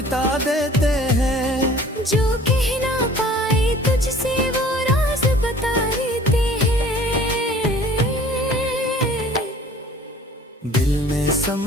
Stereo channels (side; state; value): both; normal; correlation 0.49